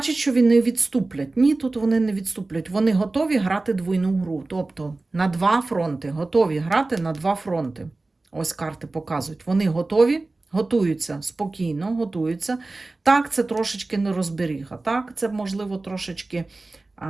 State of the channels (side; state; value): left; quieter; 3.2 dB